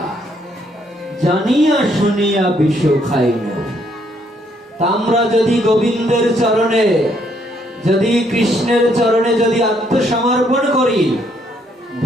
জানিয়া শুনিয়া বিষ খাইন। আমরা যদি গোবিন্দের চরণে, যদি কৃষ্ণের চরণে যদি আত্মসমর্পণ করি,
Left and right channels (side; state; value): both; normal; correlation 0.70